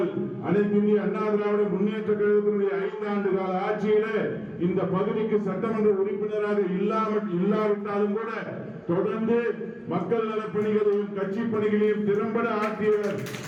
அனைத்து இந்திய அண்ணா திராவிட முன்னேற்ற கழகத்தினுடைய 5 ஆண்டு கால ஆட்சியில இந்த பகுதிக்கு சட்டமன்ற உறுப்பினராக இல்லாவிட்டாலும் கூட தொடர்ந்து மக்கள் நலப்பணிகளையும் கட்சி பணிகளையும் திறம்பட ஆற்றியவர்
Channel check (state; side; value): identical; both; correlation 1.00